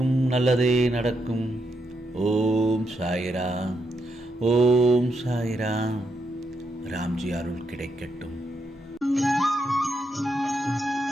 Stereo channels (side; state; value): both; normal; correlation 0.81